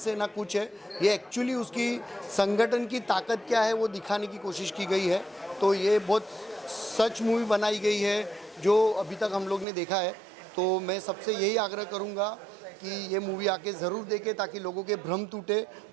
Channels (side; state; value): left; drops out; at 9.7 s